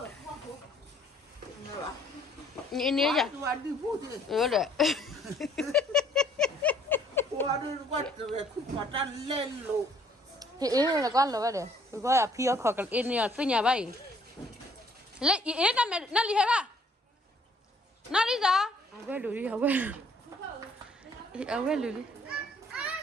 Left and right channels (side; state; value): both; normal; correlation 0.61